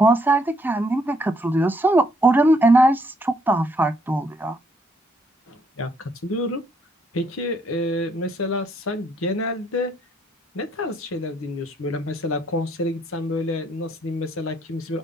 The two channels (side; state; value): both; normal; correlation 0.70